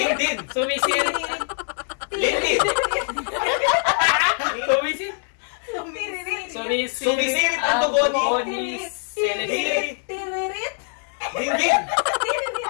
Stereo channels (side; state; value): right; silent; 56 dB below the other